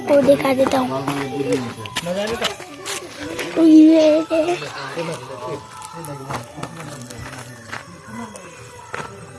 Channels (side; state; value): both; identical; correlation 1.00